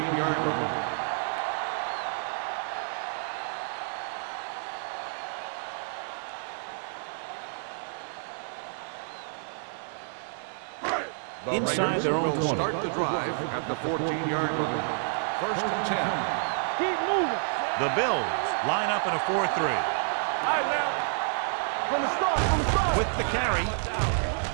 line. Inside their own 20. Start the drive at the 14-yard line. 1st and 10. The Bills line up in a 4-3. With the carry.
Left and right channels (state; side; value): silent; left; digital silence